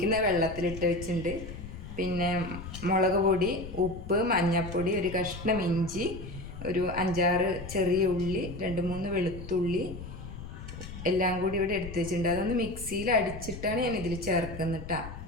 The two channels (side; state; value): left; noise; rumble, 11 dB below the sound